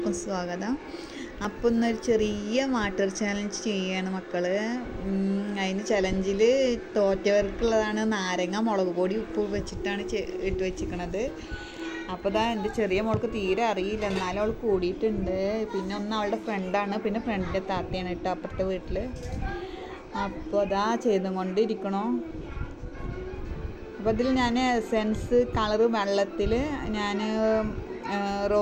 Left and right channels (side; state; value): both; identical; correlation 1.00